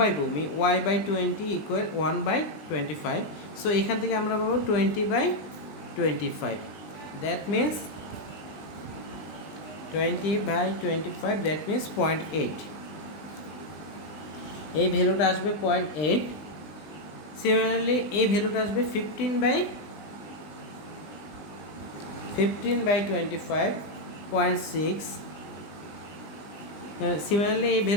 ভূমি y/20 ইকুয়াল 1/25। সো এখান থেকে আমরা পাবো 20/25, দ্যাট মিনস 20/25, দ্যাট মিনস 0.8। এই ভ্যালুটা আসবে 0.8। সিমিলারলি এই ভ্যালুটা আসবে 15/25, 0.6। সিমিলারলি এই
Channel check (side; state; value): right; late; 20 ms